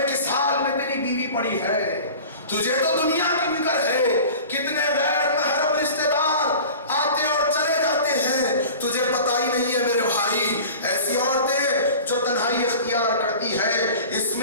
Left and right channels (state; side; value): inverted; both; correlation -0.39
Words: کس حال میں تیری بیوی پڑی ہے، تجھے تو دنیا کی فکر ہے، کتنے غیر محرم رشتہ دار آتے اور چلے جاتے ہیں، تجھے پتہ ہی نہیں ہے میرے بھائی۔ ایسی عورتیں جو تنہائی اختیار کرتی ہے، اس